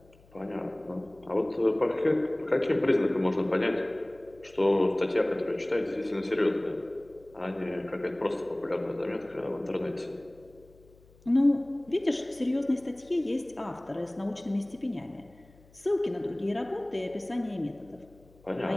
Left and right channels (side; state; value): left; noise; hum, 27 dB below the sound